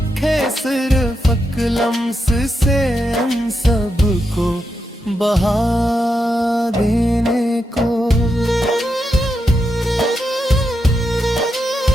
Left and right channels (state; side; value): normal; both; correlation 0.85